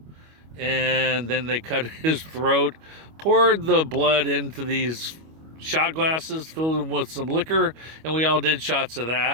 and then they cut his throat, poured the blood into these shot glasses, filled them with some liquor, and we all did shots of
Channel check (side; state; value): left; late; 25 ms